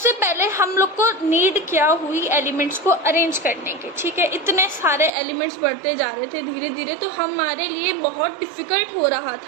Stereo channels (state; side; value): drops out; left; at 5.1 s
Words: पहले हम लोग को नीड क्या हुई एलिमेंट्स को अरेंज करने की, ठीक है। इतने सारे एलिमेंट्स बढ़ते जा रहे थे धीरे धीरे, तो हमारे लिए बहुत डिफ़िकल्ट हो रहा